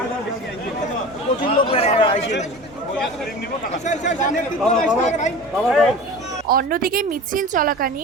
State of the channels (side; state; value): both; normal; correlation 0.35